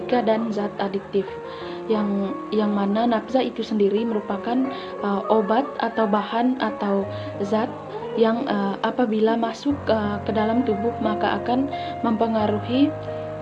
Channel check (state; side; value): identical; both; correlation 1.00